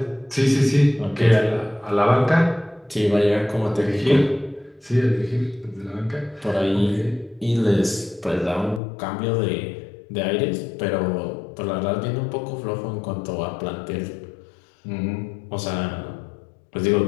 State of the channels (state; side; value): drops out; right; at 8.8 s